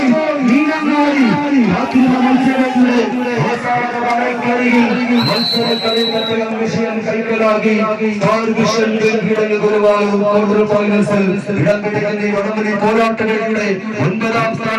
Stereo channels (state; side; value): identical; both; correlation 1.00